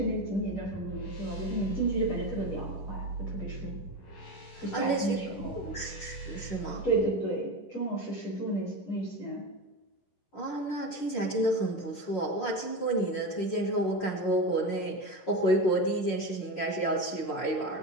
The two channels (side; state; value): right; late; 11 ms